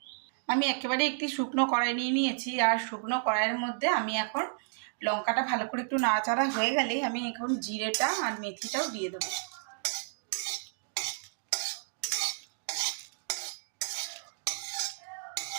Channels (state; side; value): silent; left; digital silence